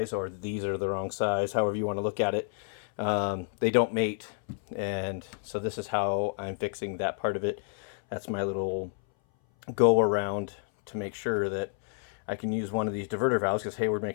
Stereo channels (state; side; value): silent; right; 58 dB below the other